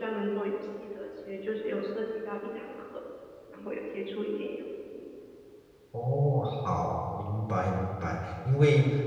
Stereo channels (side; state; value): both; identical; correlation 1.00